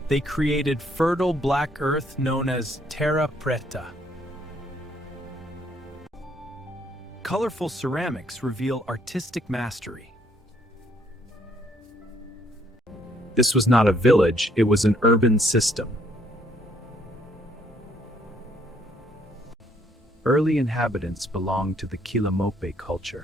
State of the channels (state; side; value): normal; both; correlation 0.67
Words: They created fertile black earth known as Terra Preta. Colorful ceramics reveal artistic mastery. This was not a village, it was an urban system. Early inhabitants belonged to the Quilamope